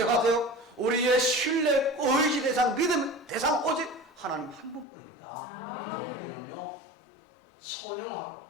우리의 신뢰, 의지 대상, 믿음 대상 오직 하나님 한 분뿐입니다. 나머지는요 선용하고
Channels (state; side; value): drops out; right; at 4.9 s